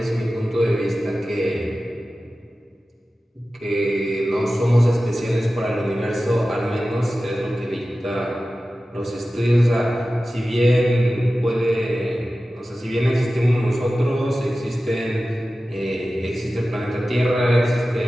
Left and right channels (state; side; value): normal; both; correlation 0.95